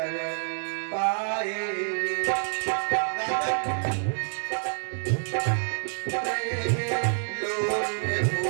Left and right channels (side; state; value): left; silent; 60 dB below the other